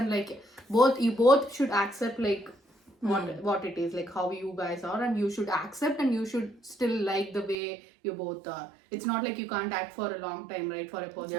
like, you both should accept, like, what it is, like how you guys are, and you should accept, and you should still like the way you both are. It's not like you can't act for a long time, right, for a person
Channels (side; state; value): left; drops out; at 7.6 s